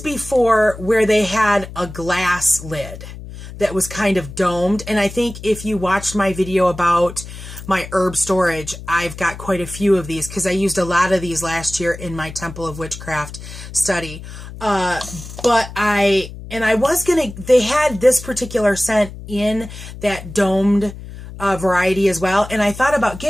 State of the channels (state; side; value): noise; left; hum, 13 dB below the sound